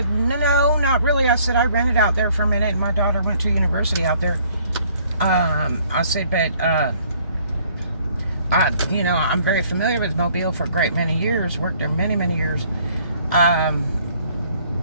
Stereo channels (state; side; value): inverted; both; correlation -0.61